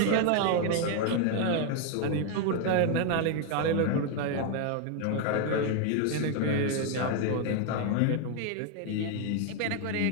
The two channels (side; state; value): both; different; correlation 0.01